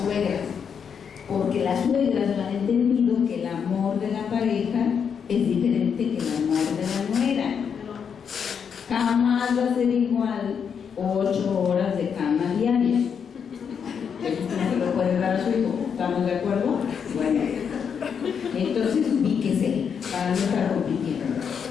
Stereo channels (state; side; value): quieter; right; 7.0 dB